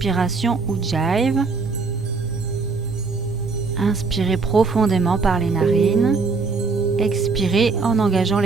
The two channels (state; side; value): quieter; left; 4.5 dB